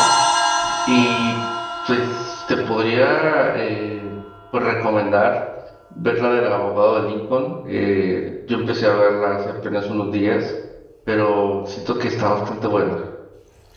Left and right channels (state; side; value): identical; both; correlation 1.00